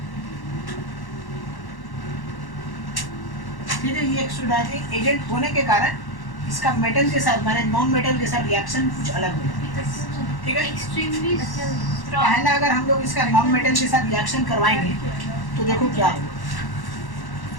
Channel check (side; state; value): right; late; 1.1 ms